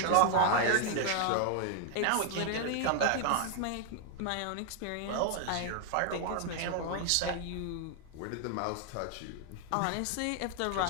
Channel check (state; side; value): different; both; correlation 0.00